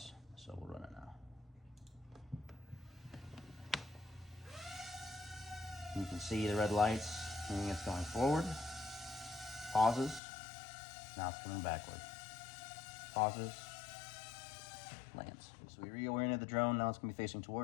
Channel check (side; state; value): right; drops out; at 10.2 s